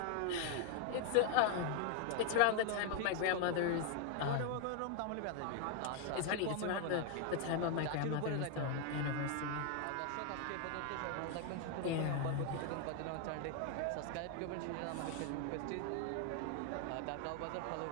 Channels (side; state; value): both; different; correlation 0.00